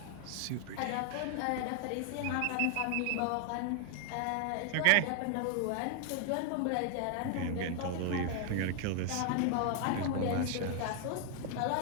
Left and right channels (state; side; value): different; both; correlation 0.00